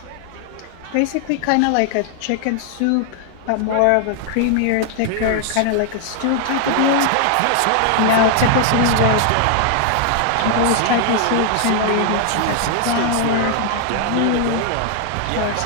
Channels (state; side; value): different; both; correlation 0.00